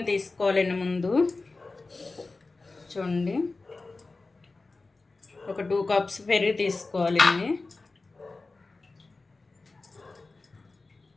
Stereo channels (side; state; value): right; quieter; 3.6 dB